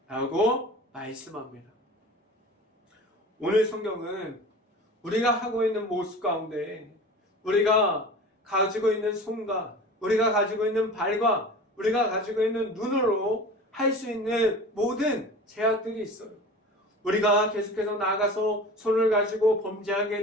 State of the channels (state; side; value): normal; both; correlation 0.37